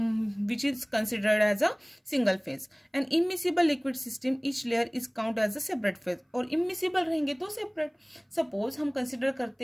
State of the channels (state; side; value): identical; both; correlation 1.00